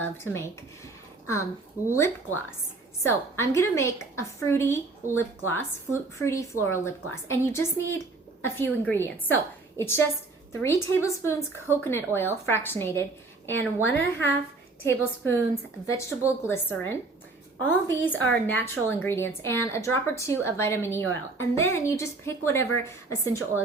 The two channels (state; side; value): quieter; left; 3.6 dB